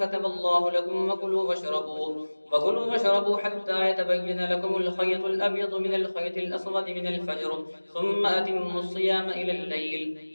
الله لكم وكلوا واشربوا حتى يتبين لكم الخيط الأبيض من الخيط الأسود من الفجر ثم أتموا الصيام إلى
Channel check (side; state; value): both; inverted; correlation -1.00